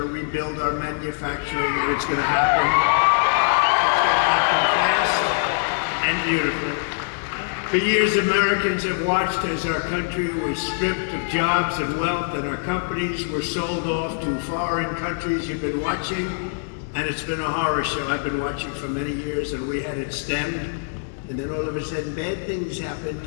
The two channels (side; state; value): right; silent; digital silence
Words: rebuild our manufacturing, and it's going to happen. It's going to happen fast and beautifully. For years, Americans have watched as our country was stripped of jobs and wealth, and our companies were sold off to foreign countries. You've been watching, and it's been a horror show. I've been watching for many years, and we had it stemmed. And then all of a sudden, bad things happened.